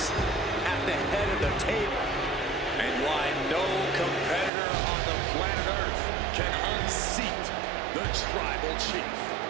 at the head of the table. And why no competitor on the planet Earth can unseat the Tribal Chief.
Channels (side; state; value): left; drops out; at 4.5 s